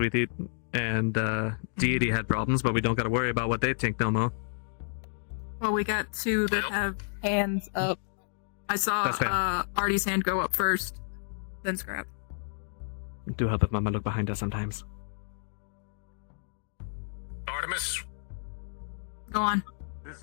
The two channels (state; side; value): silent; right; digital silence